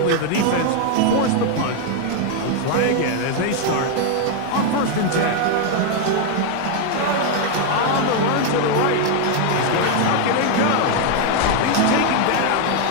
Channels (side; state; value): both; different; correlation 0.00